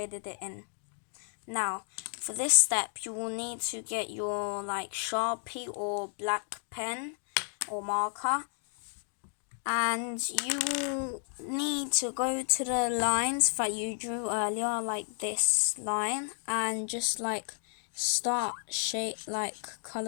it in. Now, for this step, you will need to get your like Sharpie or black pen or marker, and you will need to go to the lines that you drew earlier, like this line, and just like start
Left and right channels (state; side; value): silent; right; digital silence